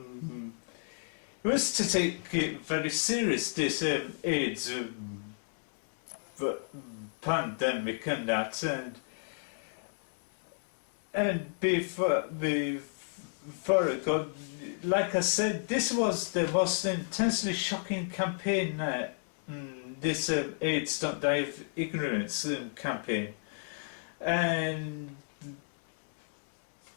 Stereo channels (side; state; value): right; silent; digital silence